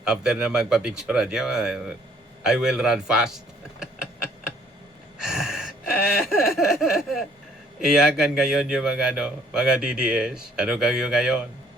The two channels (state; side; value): normal; both; correlation 0.61